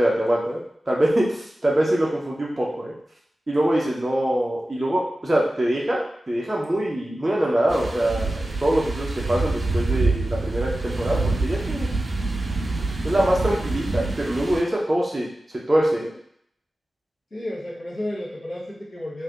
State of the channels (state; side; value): normal; both; correlation 0.94